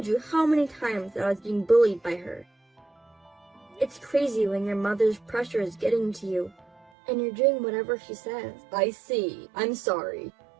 you how many times that I was being bullied by her. It's crazy when your mother's pressure is getting to you, and you're doing whatever she says. I see. I'm sorry.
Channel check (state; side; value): drops out; left; at 6.9 s